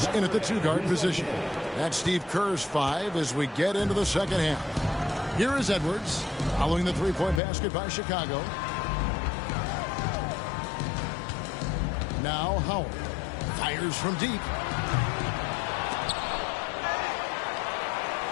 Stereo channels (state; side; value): drops out; right; at 7.4 s